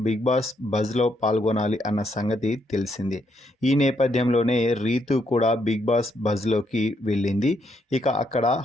బిగ్ బాస్ బజ్లో పాల్గొనాలి అన్న సంగతి తెలిసిందే. ఈ నేపథ్యంలోనే రీతు కూడా బిగ్ బాస్ బజ్లోకి వెళ్ళింది. ఇక అక్కడ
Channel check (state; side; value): normal; both; correlation 0.75